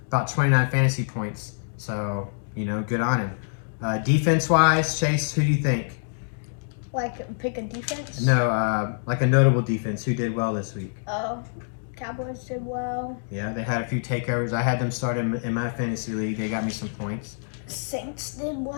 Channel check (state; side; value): silent; right; digital silence